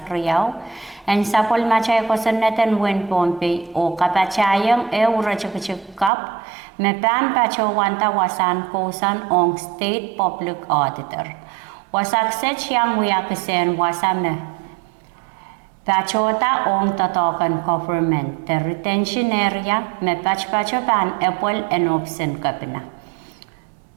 kriyaw and sapol machay kosanetan wen pompe o kapachayang rachikap me pan pachawan tawasan kosan ong state public auditor. Wasakset siyang wiyakisen wasame pachota ong totokan government the retention area me pachpachapan epol and option kapina.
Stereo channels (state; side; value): drops out; left; at 6.1 s